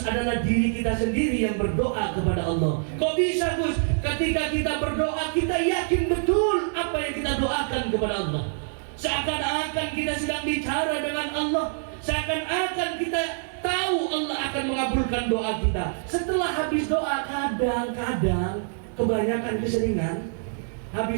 diri kita sendiri yang berdoa kepada Allah. Kok bisa, Gus? Ketika kita berdoa, kita yakin betul apa yang kita doakan kepada Allah. Seakan-akan kita sedang bicara dengan Allah, seakan-akan kita tahu Allah akan mengabulkan doa kita. Setelah habis doa, kadang-kadang, kebanyakan keseringan,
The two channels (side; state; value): left; silent; 61 dB below the other